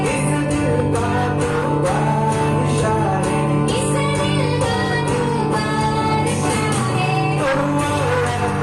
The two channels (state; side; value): identical; both; correlation 1.00